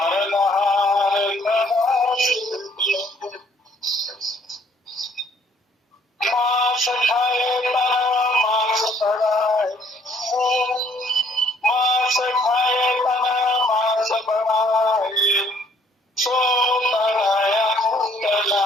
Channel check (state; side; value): normal; both; correlation 0.63